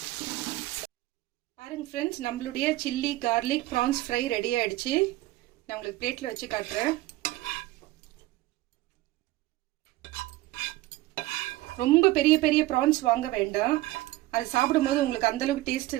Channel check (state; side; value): quieter; left; 17.7 dB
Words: பாருங்க ஃப்ரெண்ட்ஸ், நம்மளுடைய chilli garlic prawns fry ready ஆயிடுச்சு. நான் உங்களுக்கு பிளேட்ல வச்சு காட்டுறேன். ரொம்ப பெரிய பெரிய ப்ரான்ஸ் வாங்க வேண்டாம். அது சாப்பிடும்போது உங்களுக்கு அந்த அளவுக்கு டேஸ்ட்